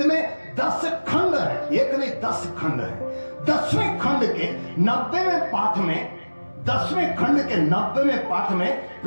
में 10 खंड है, एक नहीं 10 खंड है। 10वें खंड के 90वें पाठ में, 10वें खंड के 90वें पाठ में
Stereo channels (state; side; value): inverted; both; correlation -1.00